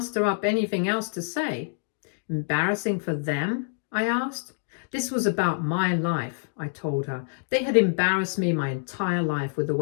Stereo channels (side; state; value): right; silent; digital silence